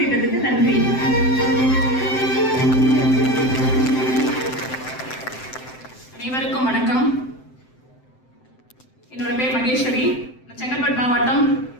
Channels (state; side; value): late; right; 7.8 ms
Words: திட்டத்துக்கு நன்றி. அனைவருக்கும் வணக்கம். என்னோட பேர் மகேஸ்வரி. செங்கல்பட்டு மாவட்டம்